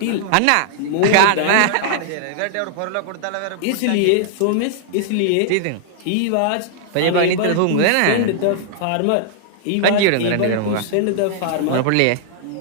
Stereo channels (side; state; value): both; different; correlation -0.01